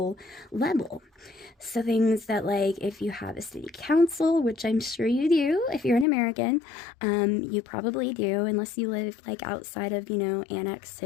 level. So things that, like, if you have a city council, which I'm sure you do if you're an American, you probably do, unless you live like outside of, you know, Annex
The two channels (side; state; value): right; drops out; at 6.1 s